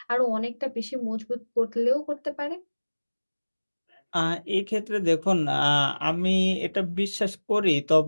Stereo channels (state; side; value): inverted; both; correlation -1.00